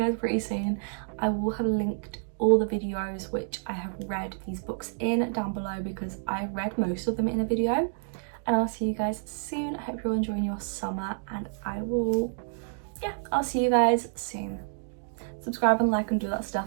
pretty soon. I will have linked all the videos which I have read these books in down below, because I read most of them in a video. And I'll see you guys soon. I hope you're all enjoying your summer, and I'll see you guys soon. Subscribe and like and do that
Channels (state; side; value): silent; left; digital silence